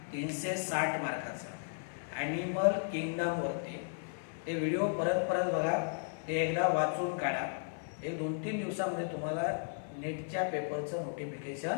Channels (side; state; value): right; silent; 54 dB below the other